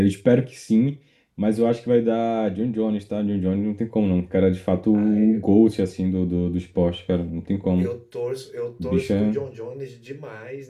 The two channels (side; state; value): both; identical; correlation 1.00